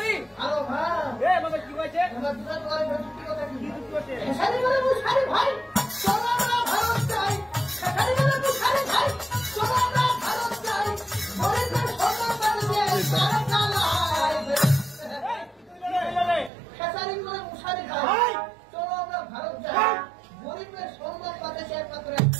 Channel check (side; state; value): left; drops out; at 16.5 s